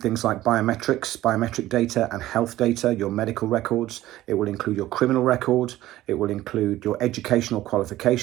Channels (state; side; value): quieter; left; 15.2 dB